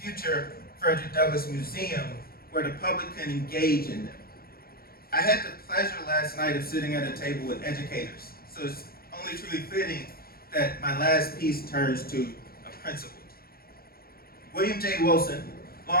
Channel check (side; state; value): right; late; 0.44 ms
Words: future Frederick Douglass Museum, where the public can engage in them. I had the pleasure last night of sitting at a table with educators, so it's only truly fitting that my last piece turns to a principle. William J. Wilson,